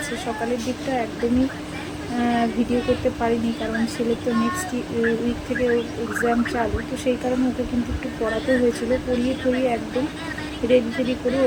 সকালের দিকটা একদমই ভিডিও করতে পারিনি, কারণ ছেলে তো নেক্সট উইক থেকে এক্সাম চালু, তো সেই কারণে ওকে কিন্তু একটু পড়াতে হয়েছিল। পড়িয়ে ঠড়িয়ে একদম রেডি করে ও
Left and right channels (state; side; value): identical; both; correlation 1.00